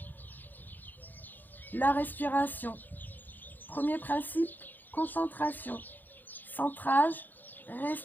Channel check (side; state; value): right; late; 0.087 ms